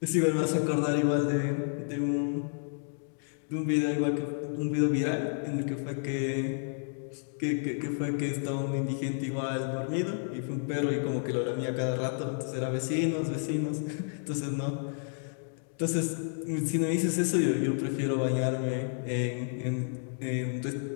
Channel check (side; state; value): right; silent; digital silence